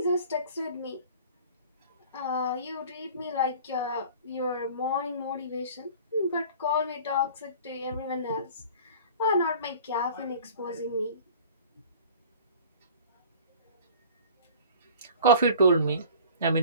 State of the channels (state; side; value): inverted; both; correlation -0.43